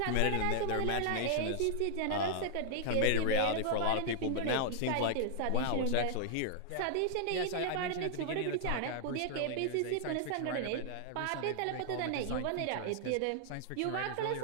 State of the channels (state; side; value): different; both; correlation -0.01